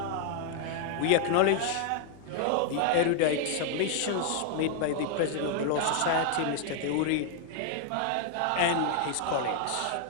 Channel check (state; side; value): different; both; correlation 0.00